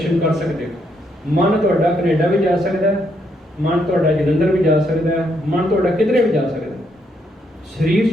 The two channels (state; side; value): normal; both; correlation 0.75